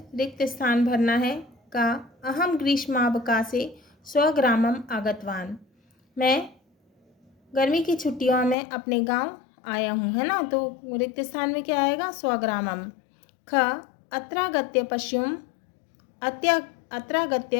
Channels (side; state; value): right; drops out; at 8.6 s